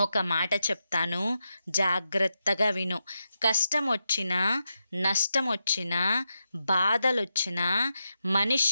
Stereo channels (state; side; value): inverted; both; correlation -0.87